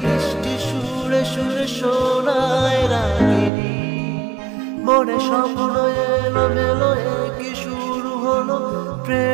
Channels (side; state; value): left; drops out; at 3.5 s